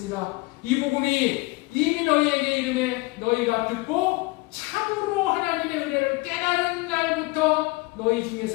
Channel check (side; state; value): right; quieter; 23.2 dB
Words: 이 복음이 이미 너희에게 이르매 너희가 듣고 참으로 하나님의 은혜를 깨달은 날부터 너희